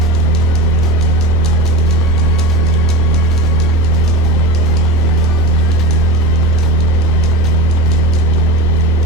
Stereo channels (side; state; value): both; normal; correlation 0.25